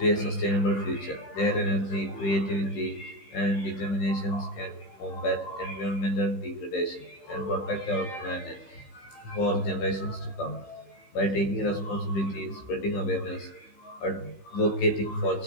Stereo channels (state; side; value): late; right; 15 ms